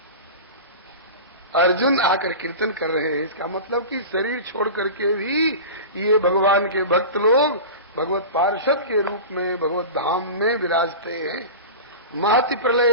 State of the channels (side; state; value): both; inverted; correlation -0.30